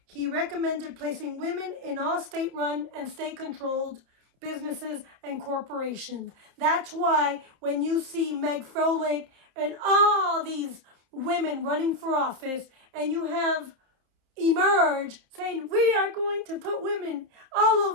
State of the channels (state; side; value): late; left; 30 ms